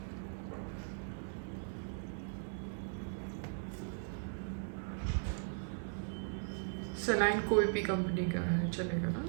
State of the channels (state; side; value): silent; left; 52 dB below the other